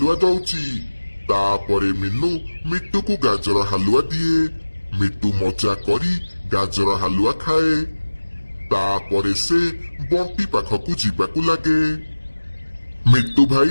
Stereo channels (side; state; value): both; inverted; correlation -1.00